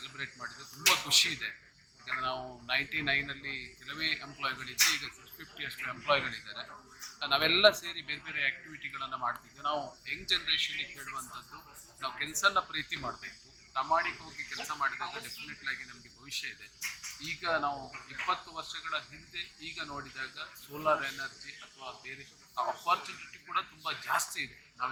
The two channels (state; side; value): identical; both; correlation 1.00